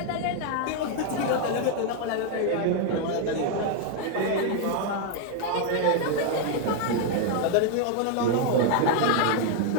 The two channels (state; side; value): different; both; correlation 0.00